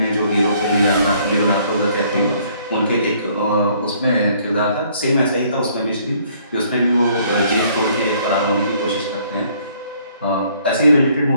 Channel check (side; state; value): both; inverted; correlation -0.63